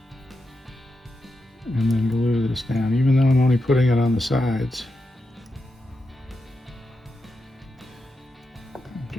And then glue this down, even though I'm only putting it on the sides. I'm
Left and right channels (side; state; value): both; normal; correlation 0.87